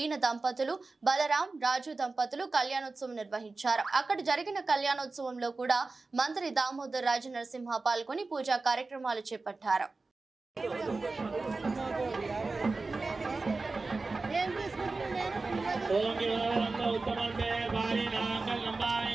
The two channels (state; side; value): quieter; left; 3.7 dB